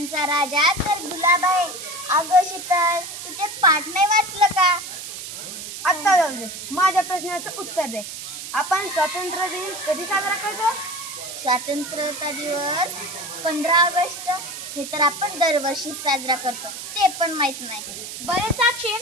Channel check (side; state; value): right; noise; hiss, 9 dB below the sound